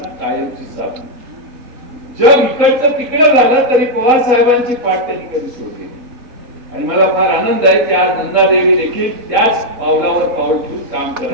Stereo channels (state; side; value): late; left; 4.1 ms